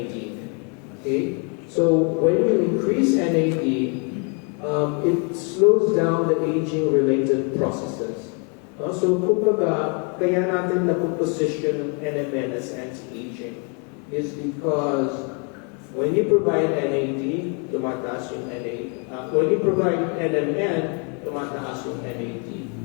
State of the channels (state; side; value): quieter; right; 37.0 dB